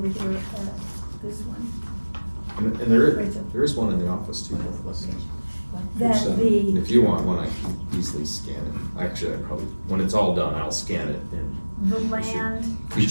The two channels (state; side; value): inverted; both; correlation -1.00